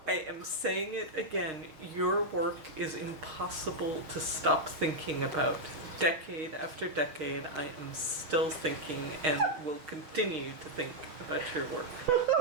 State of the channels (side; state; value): left; late; 6.4 ms